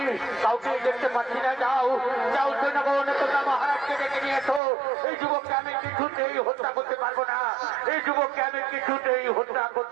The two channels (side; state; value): left; drops out; at 4.6 s